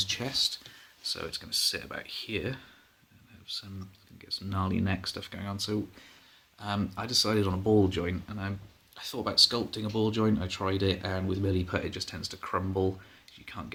chest, so it's going to sit about here and have get some gnarly neck stuff going on. So I decided on a ball joint, and I thought about sculpting a ball joint. I tried it, and with milliput it just tends to crumble. You can't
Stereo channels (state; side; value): identical; both; correlation 1.00